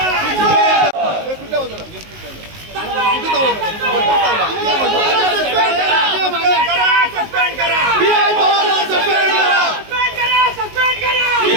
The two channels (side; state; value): left; late; 19 ms